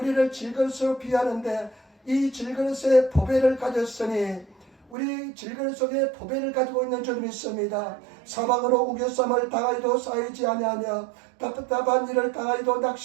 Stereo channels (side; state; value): left; drops out; at 5.0 s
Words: 질그릇으로 비하는데 이 질그릇에 보배를 가졌으니 우리 질그릇 속에 보배를 가지고 있는 줄 믿습니다. 사방으로 우겨쌈을 당하여도 쌓이지 아니하며 답답한 일을 당하여도